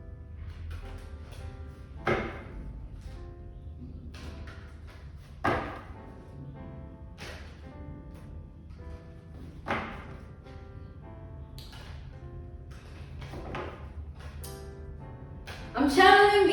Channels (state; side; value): identical; both; correlation 1.00